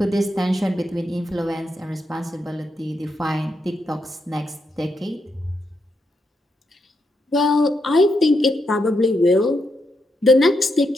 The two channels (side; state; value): both; normal; correlation 0.82